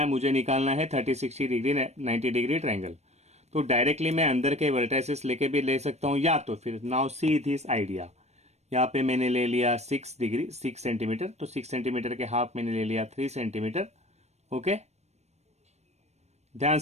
मुझे निकालना है 30, 60 डिग्री 90 डिग्री ट्रायंगल। तो डायरेक्टली मैं अंदर के वर्टाइसेस लेके भी ले सकता हूँ, या तो फिर नाउ सी दिस आइडिया। यहाँ पे मैंने ले लिया 6 डिग्री 6 सेंटीमीटर, तो 6 सेंटीमीटर के हाफ मैंने ले लिया 3 सेंटीमीटर। ओके, ध्यान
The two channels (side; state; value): left; late; 0.32 ms